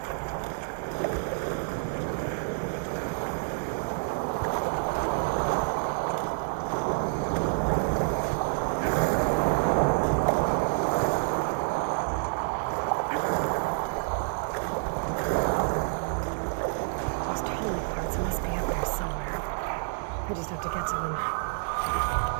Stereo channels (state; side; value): silent; left; 59 dB below the other